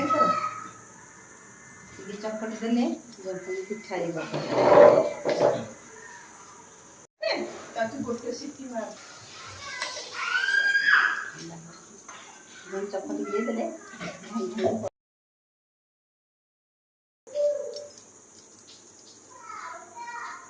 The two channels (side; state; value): both; identical; correlation 1.00